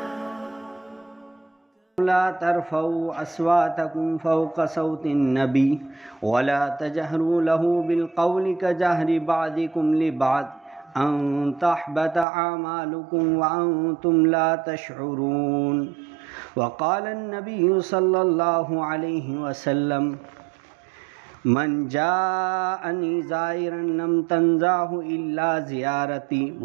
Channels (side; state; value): left; drops out; at 12.2 s